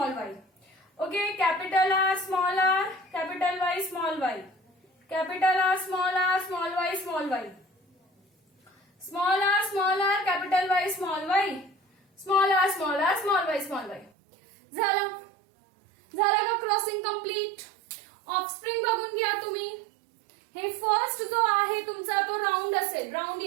Y. Okay, capital R, capital Y, small Y, capital R, small Y, small Y, small R, capital Y, small Y, small R, small Y, small Y. झालं का crossing complete? Offspring बघून घ्या तुम्ही. हे first जो आहे तुमचा तो राऊंड असेल, राऊंड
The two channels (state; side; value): drops out; left; at 14.1 s